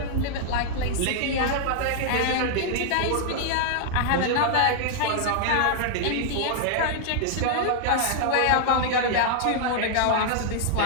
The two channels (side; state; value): both; different; correlation -0.01